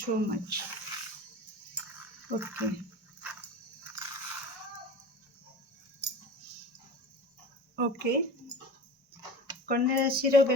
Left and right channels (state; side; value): normal; both; correlation 0.35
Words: much. Okay okay कन्या राशि